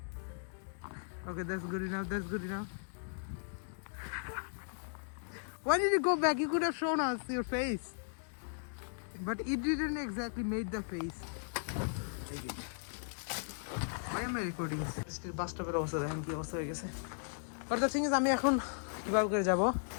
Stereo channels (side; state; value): right; silent; digital silence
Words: Okay, that's good enough. That's good enough. Why did you go back? You could have shown us your face. But it didn't exactly make the face. Why am I recording? Still bus stop এর অবস্থা দেখেন কি অবস্থা হয়ে গেছে। But the thing is, আমি এখন কিভাবে করে যাব?